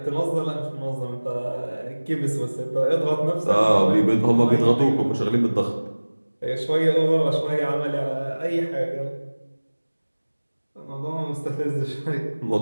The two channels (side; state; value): both; inverted; correlation -1.00